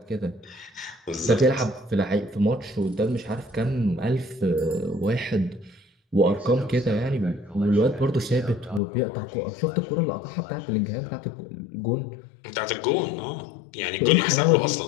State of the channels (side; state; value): right; drops out; at 8.8 s